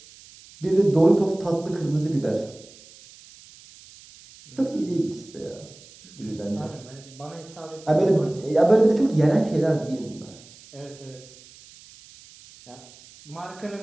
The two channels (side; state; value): right; noise; hiss, 22 dB below the sound